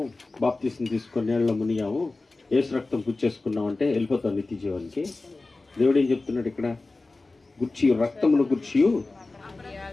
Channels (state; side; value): quieter; right; 3.4 dB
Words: బాప్తిసం తీసుకొని నీళ్ళలో మునిగాము, యేసు రక్తం పుచ్చేసుకున్నాం అంటే వెళ్ళిపోతాం నిత్య జీవానికి. దేవుడు ఏం చెప్తున్నాడు ఇక్కడ? గుర్చియు రక్తమును గుర్చియు